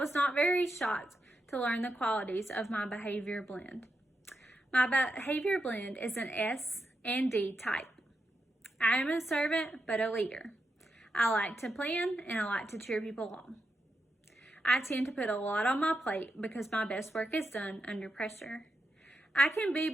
not very shocked to learn the qualities of my behavior blend. My behavior blend is an S and D type. I am a servant, but a leader. I like to plan and I like to cheer people on. I tend to put a lot on my plate because my best work is done under pressure. I can be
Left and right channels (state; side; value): normal; both; correlation 0.86